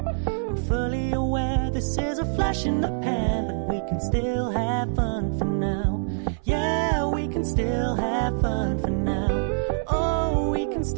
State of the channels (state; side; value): silent; left; 62 dB below the other